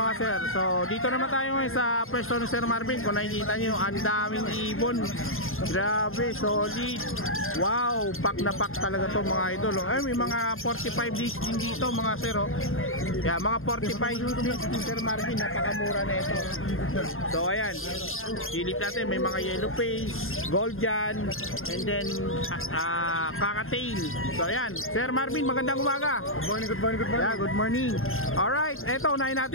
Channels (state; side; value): late; right; 0.61 ms